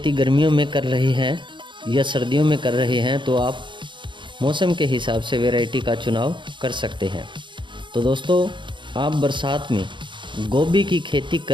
गर्मियों में कर रहे हैं या सर्दियों में कर रहे हैं तो आप मौसम के हिसाब से वैरायटी का चुनाव कर सकते हैं। तो दोस्तों, आप बरसात में गोभी की खेती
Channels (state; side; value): late; left; 0.23 ms